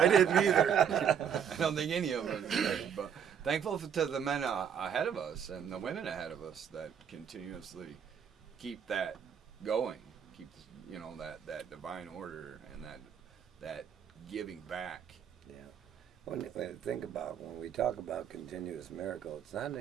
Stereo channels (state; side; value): quieter; left; 8.1 dB